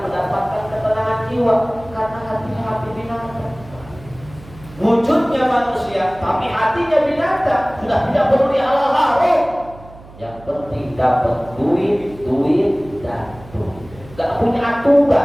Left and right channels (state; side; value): noise; right; hum, 20 dB below the sound